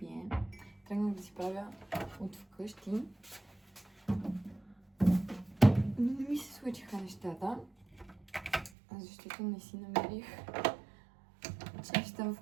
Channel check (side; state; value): left; drops out; at 8.7 s